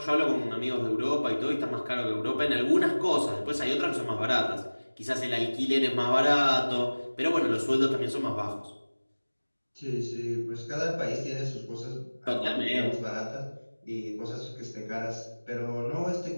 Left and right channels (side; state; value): both; inverted; correlation -1.00